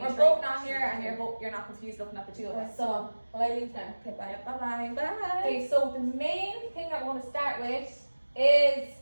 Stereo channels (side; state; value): both; inverted; correlation -1.00